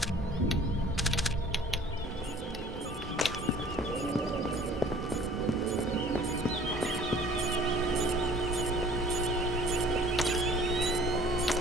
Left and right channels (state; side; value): normal; both; correlation 0.51